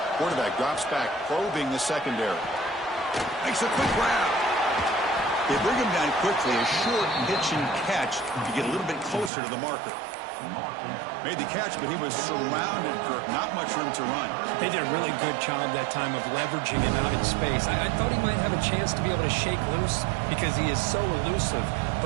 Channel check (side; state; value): left; drops out; at 9.3 s